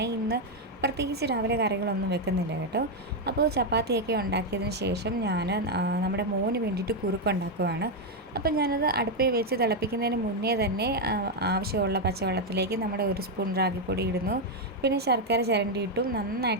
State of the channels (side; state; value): both; normal; correlation 0.02